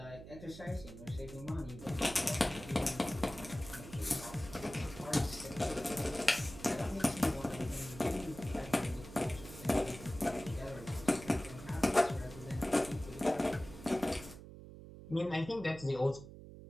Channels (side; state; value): right; noise; hum, 14 dB below the sound